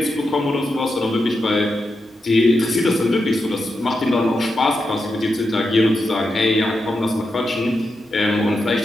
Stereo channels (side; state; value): both; normal; correlation 0.87